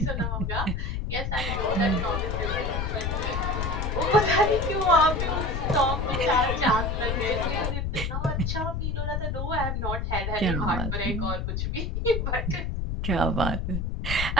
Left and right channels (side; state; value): left; noise; rumble, 1 dB below the sound